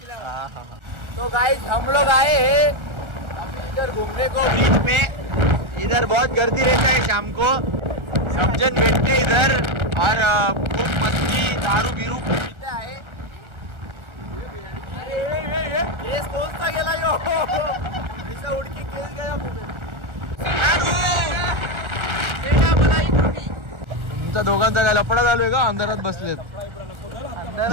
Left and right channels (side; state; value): left; late; 1.4 ms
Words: तो गाइस हम लोग आए हैं अभी इधर घूमने को बीच में. इधर बहुत गर्दी रहता है शाम को. सब जन बैठते इधर और खूब मस्ती दारू बिरू पीते आहे. केस कोणता गेला यो? ऐसा उडकी केस गया. तुमचा दोघांचा काय लफडा चालू आहे का? अंधारात बसलेत.